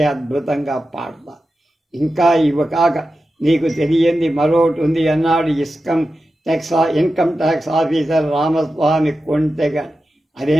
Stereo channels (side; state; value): both; normal; correlation 0.92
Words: అద్భుతంగా పాడతారు. ఇంకా ఇవి కాక నీకు తెలియంది మరొకటి ఉంది అన్నాడు ఇన్కమ్ ట్యాక్స్ ఆఫీసర్ రామస్వామి కొంటెగా.